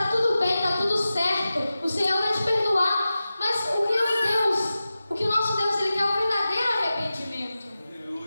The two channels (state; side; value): inverted; both; correlation -0.94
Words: tudo bem, tá tudo certo, o Senhor vai te perdoar. Mas o que o nosso Deus, Ele quer o verdadeiro arrependimento.